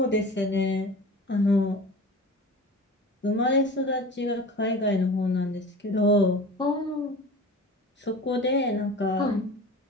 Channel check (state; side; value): normal; both; correlation 0.36